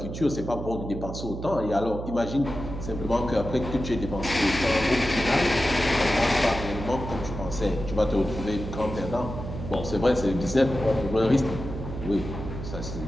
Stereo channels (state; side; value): noise; right; hum, 8 dB below the sound